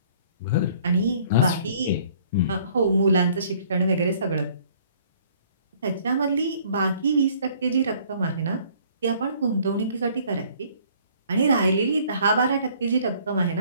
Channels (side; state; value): both; inverted; correlation -0.58